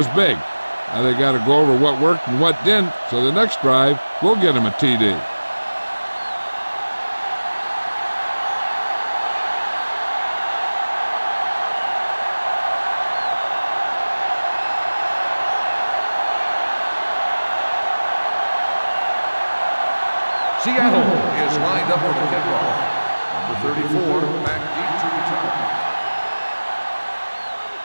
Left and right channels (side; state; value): both; inverted; correlation -1.00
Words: big. Now they got to go over what worked and what didn't, so the next drive will get them a TD. Seattle is lined up for the kickoff. Number 34, back deep to return.